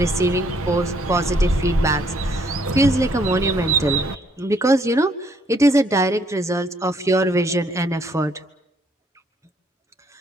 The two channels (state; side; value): normal; both; correlation 0.67